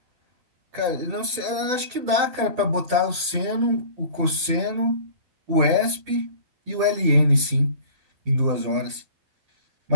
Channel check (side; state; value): left; late; 12 ms